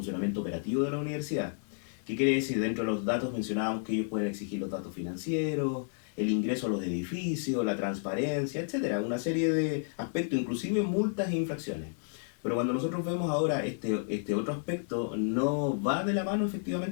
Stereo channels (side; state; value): right; silent; digital silence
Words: operativo de la universidad. ¿Qué quiere decir? Dentro de los datos mencionábamos que ellos pueden exigir los datos financieros, el ingreso a los edificios, la transparencia, etcétera, una serie de aspectos, inclusive multas e infracciones. Pero cuando nosotros vemos ahora este otro aspecto, no va de la mano